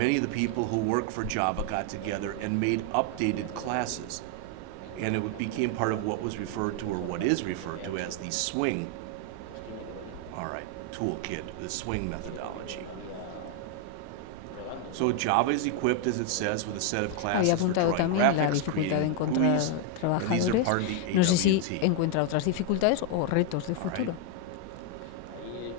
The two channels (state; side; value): different; both; correlation 0.01